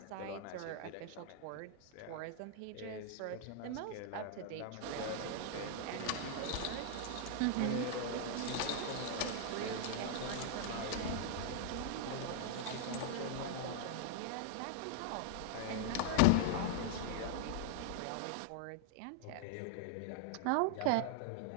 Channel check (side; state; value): both; different; correlation 0.00